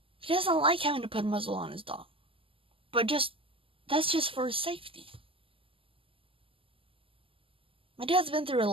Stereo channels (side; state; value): left; late; 0.26 ms